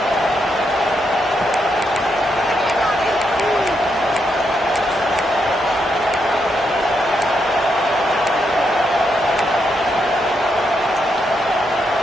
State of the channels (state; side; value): normal; both; correlation 0.80